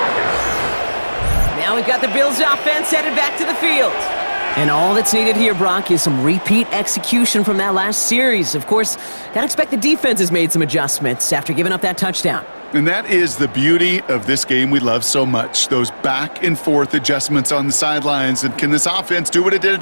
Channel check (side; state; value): both; inverted; correlation -1.00